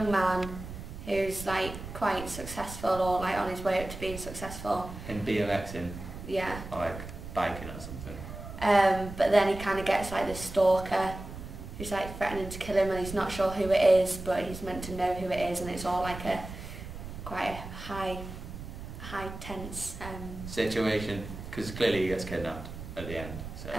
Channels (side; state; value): right; noise; rumble, 11 dB below the sound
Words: man who's like quite successful, or like on his way up to being successful. In BMXing? Yeah. Or like biking or something? But then he kind of gets like this stalker who's like threatening to kill him, and he's not sure who it is, but he's meant to know who it is, and it's all like a quite a high tense situation, because clearly he gets kidnapped at the end. So.